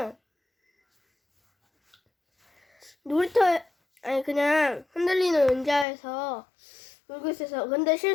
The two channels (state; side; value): drops out; right; at 5.9 s